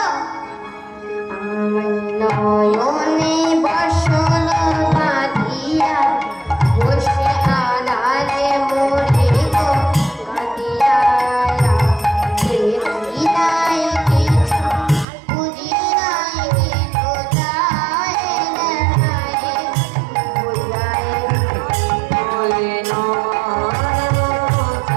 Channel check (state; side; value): drops out; left; at 15.1 s